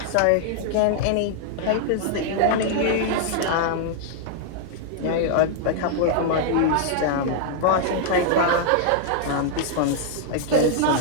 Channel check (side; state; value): both; different; correlation -0.01